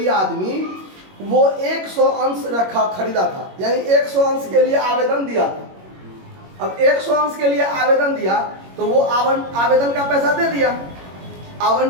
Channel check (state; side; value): late; left; 21 ms